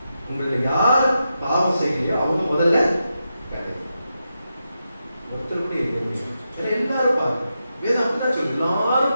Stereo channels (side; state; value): both; inverted; correlation -0.87